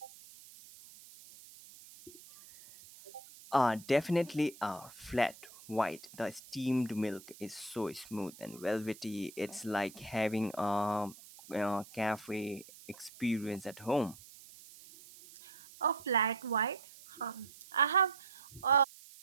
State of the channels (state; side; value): noise; right; hiss, 19 dB below the sound